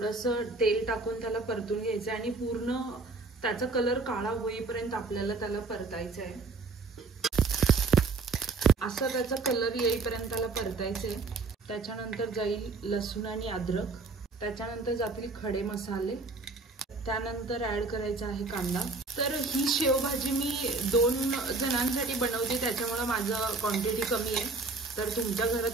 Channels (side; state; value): left; quieter; 3.8 dB